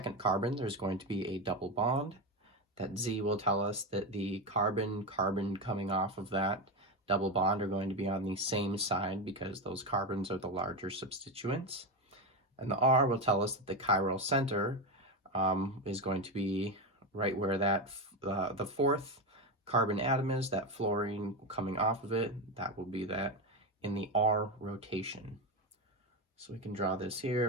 carbon, there's going to be a double bond. That Z will tell us that the carbon coming off of that double bond are going to be on the same side because those carbons are the larger substituents. And the R will tell us that the chiral center is going to be right where that the fourth carbon atom is, that fluorine coming off of it. That will be that in the R rotation. So we can draw this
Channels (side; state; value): both; normal; correlation 0.14